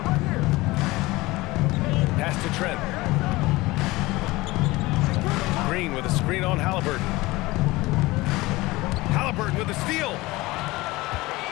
Pass to Trent. Green with a screen on Halliburton. Halliburton with a steal.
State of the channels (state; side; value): quieter; right; 20.5 dB